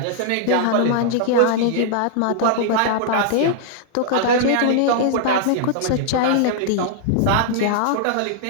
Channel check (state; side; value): different; both; correlation -0.01